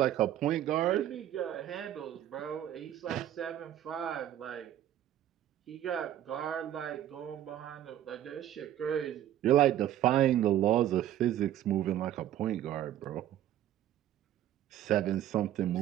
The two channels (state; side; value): quieter; left; 11.9 dB